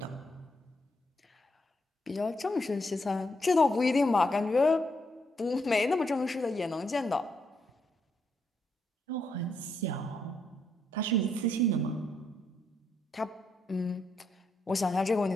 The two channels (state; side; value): normal; both; correlation 0.78